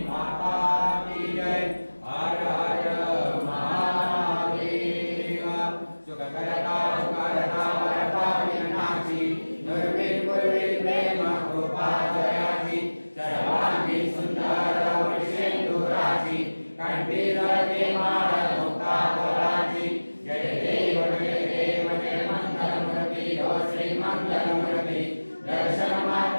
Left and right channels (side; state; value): both; inverted; correlation -1.00